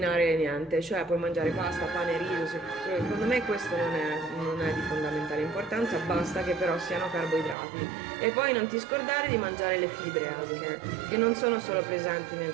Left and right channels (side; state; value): left; drops out; at 7.6 s